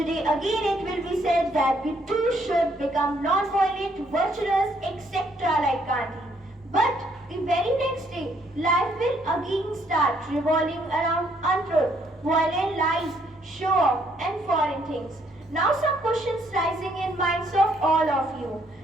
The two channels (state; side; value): normal; both; correlation 0.69